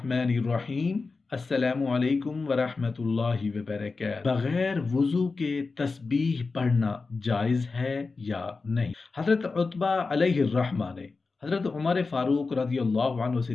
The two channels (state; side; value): quieter; right; 4.1 dB